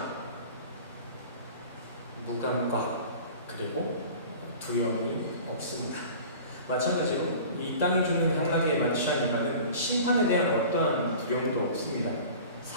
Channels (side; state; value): both; inverted; correlation -0.41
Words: 무감각 그리고 두려움이 없습니다. 마찬가지로 이 땅이 주는 향락에 만취한 인간은 심판에 대한 어떠한 두려움도 없습니다.